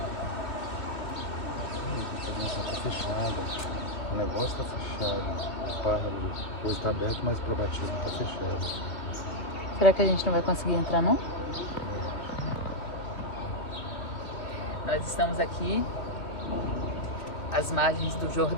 O negócio tá fechado. O carro depois tá aberto, mas para batismo tá fechado. Será que a gente não vai conseguir entrar, não? Nós estamos aqui às margens do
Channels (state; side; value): late; right; 2.7 ms